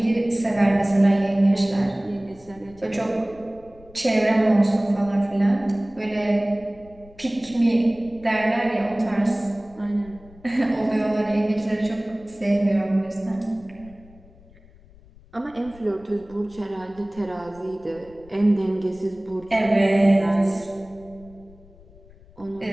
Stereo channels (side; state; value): left; noise; rumble, 24 dB below the sound